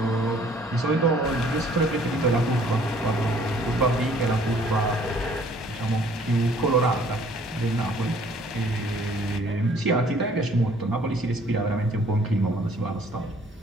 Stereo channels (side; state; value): both; normal; correlation 0.58